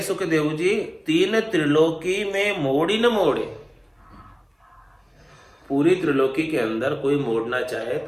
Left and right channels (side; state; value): both; identical; correlation 1.00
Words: सुखदेव जी, 3 त्रिलोकी में मोड़ी न मोड़े। पूरी त्रिलोकी के अंदर कोई मोड़ना चाहे